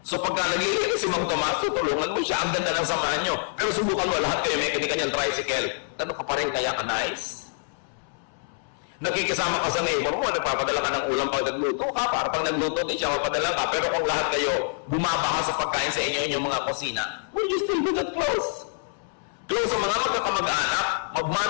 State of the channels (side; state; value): right; silent; 61 dB below the other